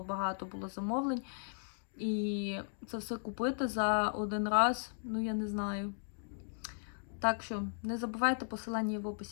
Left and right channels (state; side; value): silent; right; digital silence